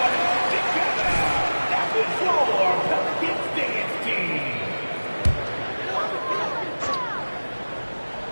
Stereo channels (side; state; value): both; inverted; correlation -1.00